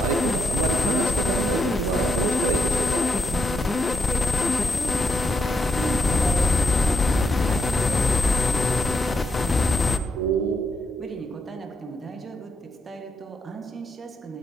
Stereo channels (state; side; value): normal; both; correlation 0.77